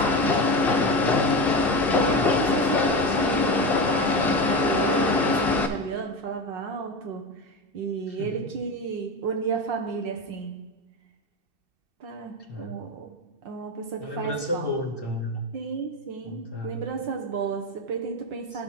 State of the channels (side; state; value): left; late; 2.7 ms